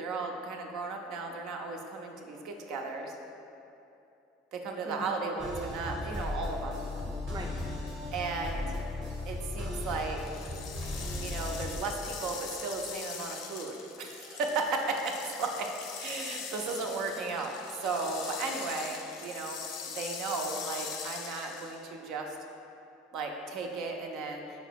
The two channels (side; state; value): both; normal; correlation 0.39